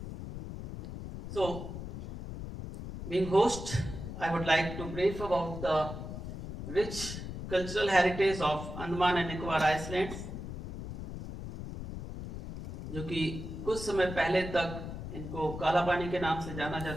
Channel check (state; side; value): noise; left; rumble, 8 dB below the sound